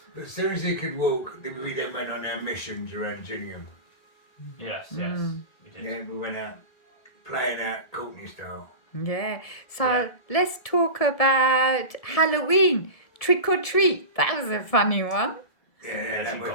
But as soon as he could walk, we then went on our missions around Gillingham. Yes. We did. Yeah, we went out playing out Courtney style. Yeah. So let's talk about Halloween. Trick or treat. That was a funny one. Yeah, that was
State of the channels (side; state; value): right; late; 1.7 ms